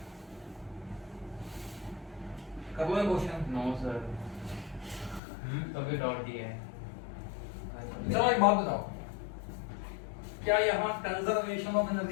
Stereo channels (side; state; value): right; drops out; at 5.2 s